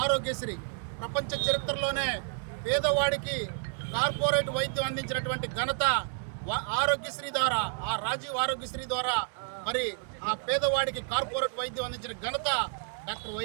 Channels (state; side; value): silent; left; 58 dB below the other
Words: ఆరోగ్యశ్రీ ప్రపంచ చరిత్రలోనే పేదవాడికి కార్పొరేట్ వైద్యం అందించినటువంటి ఘనత ఆరోగ్యశ్రీ ద్వారా, ఆ రాజీవ్ ఆరోగ్యశ్రీ ద్వారా మరి ఆ పేదవాడికి కార్పొరేట్ వైద్యం అందించిన ఘనత డాక్టర్